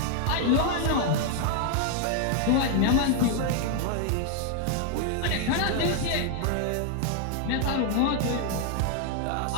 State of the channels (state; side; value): different; both; correlation 0.00